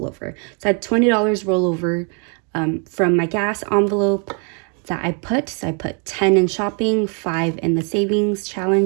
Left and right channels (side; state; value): left; quieter; 38.2 dB